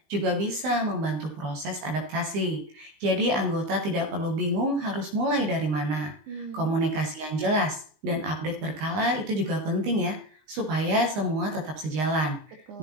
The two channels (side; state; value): left; late; 20 ms